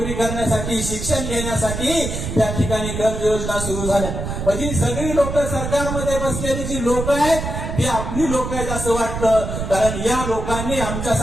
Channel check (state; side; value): noise; right; rumble, 5 dB below the sound